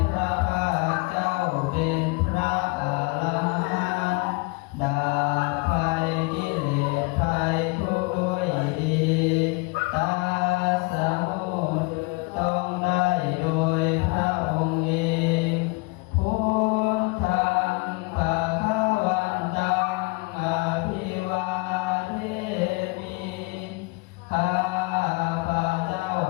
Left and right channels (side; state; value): right; quieter; 28.2 dB